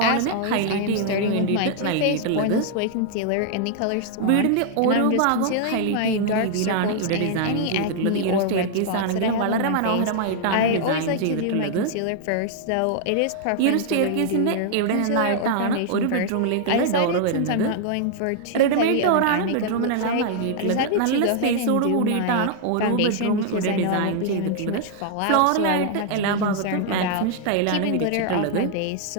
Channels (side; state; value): both; different; correlation -0.01